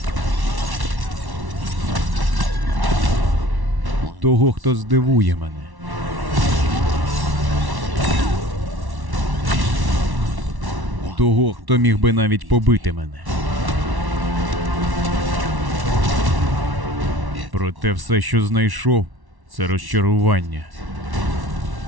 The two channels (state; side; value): late; left; 1.1 ms